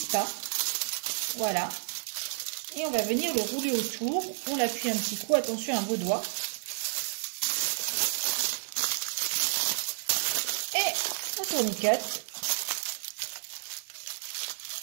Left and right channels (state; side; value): silent; left; digital silence